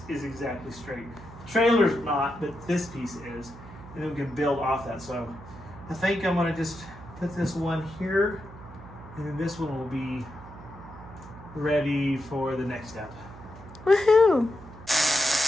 is exactly straight. The trailer's not, but this piece is. And then we can build off that. So I think I'm gonna just put this one here, and then this one will be ready for the next step. Woohoo!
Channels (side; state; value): right; noise; hum, 17 dB below the sound